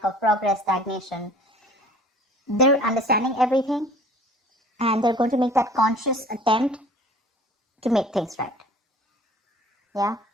of progress, stagnation. They're understanding everything and they're going to make that conscious attempt to make things right. Yeah.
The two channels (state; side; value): normal; both; correlation 0.48